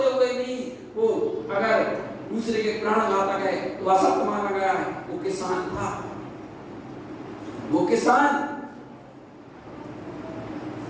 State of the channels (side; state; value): both; identical; correlation 1.00